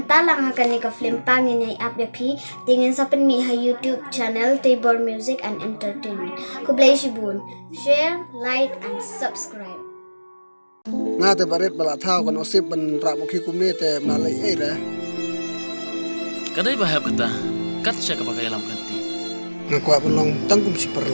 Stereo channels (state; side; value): inverted; both; correlation -1.00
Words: hakan ni ka film pangin ay apyapi tingin sa penmi ha YouTube channel Tabor Music and Entertainment. Kublay shibun, share, like and subscribe. Nga te barit bala thao kan osip ban rapokhi kumne te malai ai ra. Kadai bahaya kata, kat siya kapag alam kanti. Nga kwa long tangkum si